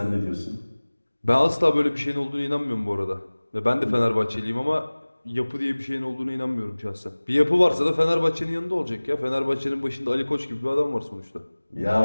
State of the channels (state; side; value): inverted; both; correlation -1.00